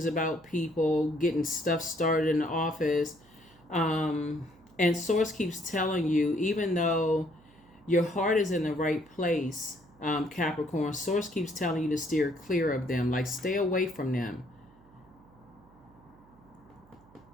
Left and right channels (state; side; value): noise; right; hum, 27 dB below the sound